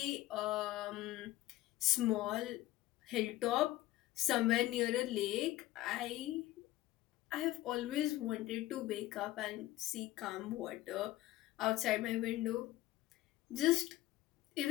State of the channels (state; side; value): quieter; right; 16.1 dB